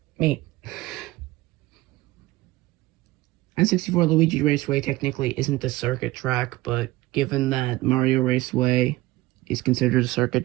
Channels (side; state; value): left; quieter; 18.4 dB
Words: Me. N64 Luigi Raceway technically isn't a circuit track, but given that Mario Raceway is considered a circuit